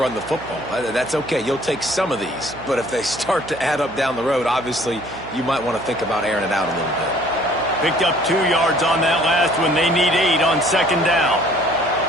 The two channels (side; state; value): right; noise; hum, 16 dB below the sound